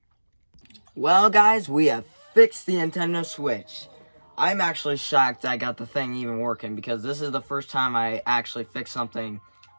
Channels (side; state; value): both; inverted; correlation -1.00